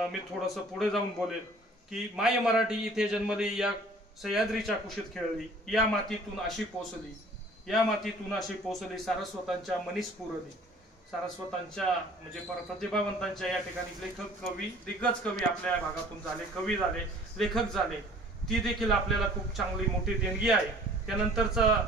मी थोडंसं पुढे जाऊन बोलेल की माय मराठी इथे जन्मली, या सह्याद्रीच्या कुशीत खेळली, या मातीतून अशी पोचली, या मातीतून अशी पोचली, सारस्वतांच्या मनीस पुरली. सारस्वतांच्या म्हणजे प्रतिभावंतांच्या या ठिकाणी लेखक, कवी, दिग्गज कवी आपल्या भागातून झाले, कवी झाले, लेखक झाले. ती देखील आपल्याला खूप चांगली मोठी देणगी आहे. त्यानंतरचा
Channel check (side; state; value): both; normal; correlation 0.51